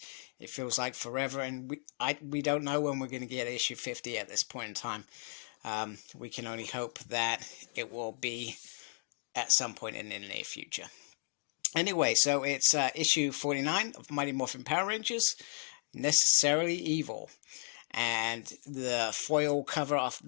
It feels like forever, and we don't know when we're going to get issue 50 at this point in time. We can only hope that it will be at some point in the near future. Anyway, so it's issue 49 of Mighty Morphin Power Rangers, Necessarily Evil. And the foil cover of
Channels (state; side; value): silent; right; 55 dB below the other